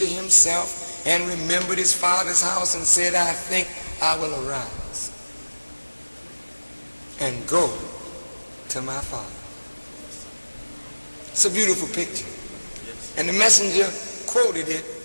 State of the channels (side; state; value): both; inverted; correlation -1.00